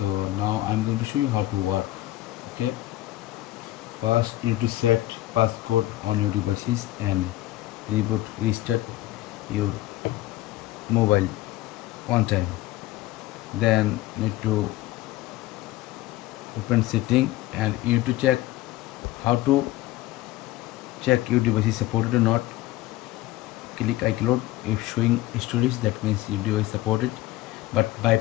now I am going to show you how to work. Okay, first you need to set passcode on your devices and restart your mobile one time. Then need to open setting and you need to check how to check your device is supported or not. Click iCloud. If showing storage, that means your device supported, but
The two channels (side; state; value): right; quieter; 16.1 dB